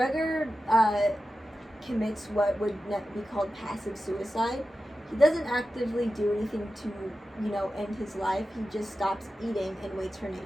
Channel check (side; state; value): both; normal; correlation 0.93